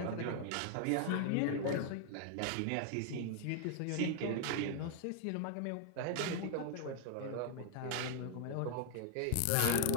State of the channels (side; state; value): both; different; correlation 0.00